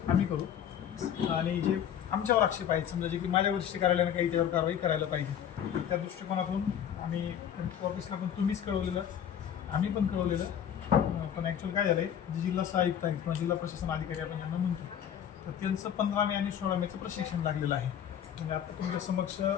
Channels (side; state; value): right; quieter; 9.2 dB